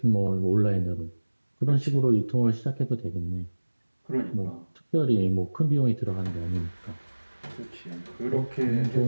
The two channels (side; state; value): both; inverted; correlation -1.00